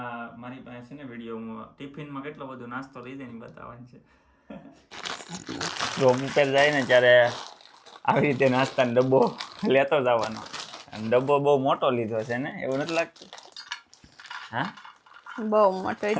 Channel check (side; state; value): both; identical; correlation 1.00